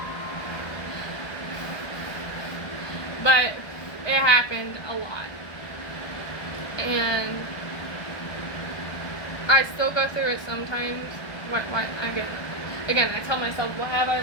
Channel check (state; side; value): late; right; 1.2 ms